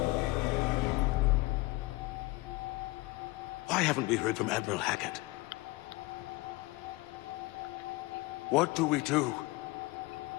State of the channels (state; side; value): quieter; right; 21.8 dB